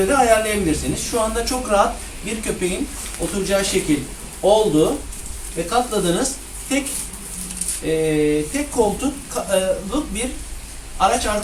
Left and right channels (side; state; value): both; identical; correlation 1.00